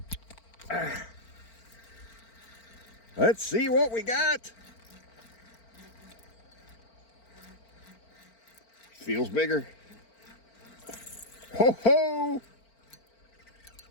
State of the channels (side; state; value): right; late; 4.4 ms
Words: Let's see what we got. Feels bigger. Ho ho!